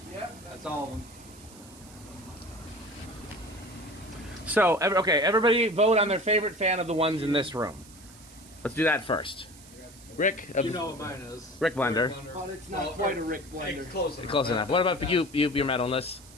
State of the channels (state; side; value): noise; right; hiss, 21 dB below the sound